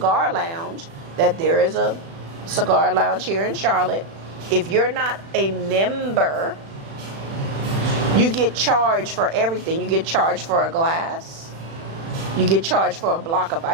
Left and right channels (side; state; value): left; late; 36 ms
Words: lounge, that there is a cigar lounge here in Charlotte. If you're not a member, you get charged for everything. You get charged for a glass. You get charged for a block of